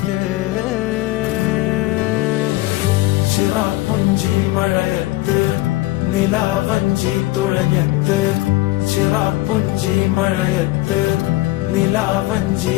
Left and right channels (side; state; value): right; quieter; 18.3 dB